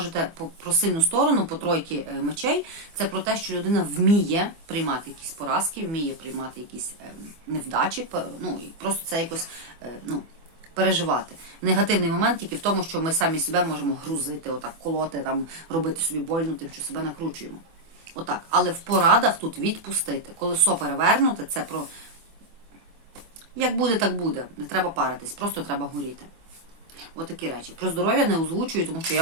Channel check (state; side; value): late; left; 24 ms